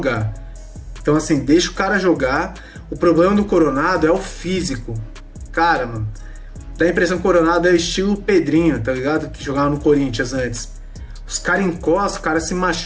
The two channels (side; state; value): both; identical; correlation 1.00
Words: Então, assim, deixa o cara jogar. O problema do Coronado é o físico. Cara, mano, dá a impressão que o Coronado é estilo Pedrinho, tá ligado? Que jogava no Corinthians antes. Os caras encostam, o cara se